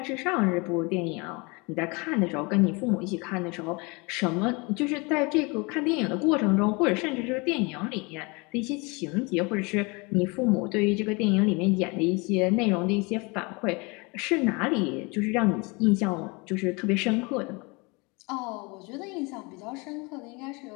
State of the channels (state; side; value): quieter; right; 28.0 dB